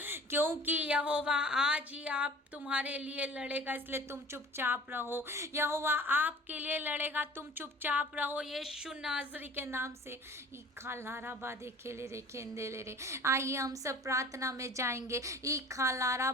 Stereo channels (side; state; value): both; normal; correlation 0.45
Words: क्योंकि यहोवा आज ही आप तुम्हारे लिए लड़ेगा, इसलिए तुम चुपचाप रहो। यहोवा आपके लिए लड़ेगा, तुम चुपचाप रहो यीशु नाज़री के नाम से। ई खालारा बादे खेले रे खेंदे ले रे। आइए हम सब प्रार्थना में जाएंगे। ई खालारा